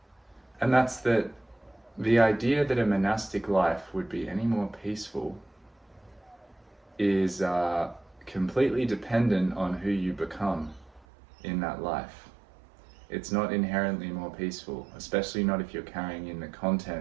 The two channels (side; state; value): left; drops out; at 11.1 s